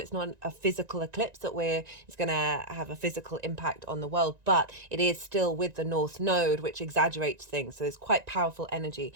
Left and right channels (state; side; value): late; left; 1.9 ms